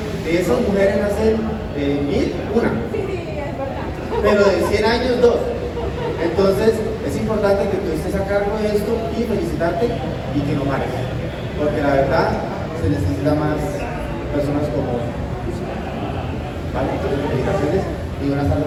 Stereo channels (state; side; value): identical; both; correlation 1.00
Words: de esas mujeres nacen 1000, una, pero de 100 años 2. Entonces, Es importante que tú estés a cargo de esto y felicitarte y que no pares, porque la verdad se necesita más personas como tú. ¿Vale? Entonces, felicitaciones y buenas tardes